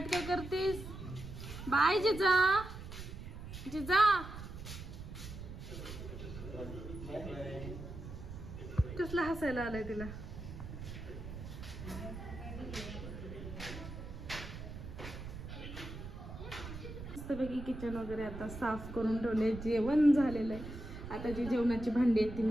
करतीस. बाय जिजा. कसला हसायला आलाय तिला. मस्तपैकी किचन वगैरे आता साफ करून ठेवले. जेवण झालेलं आहे. आता जी जेवणाची भांडी आहेत ती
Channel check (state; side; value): noise; right; rumble, 10 dB below the sound